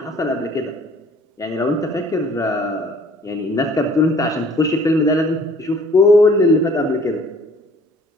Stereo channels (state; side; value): normal; both; correlation 0.55